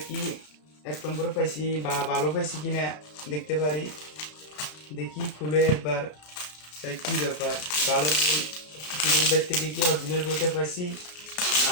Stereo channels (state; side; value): late; right; 33 ms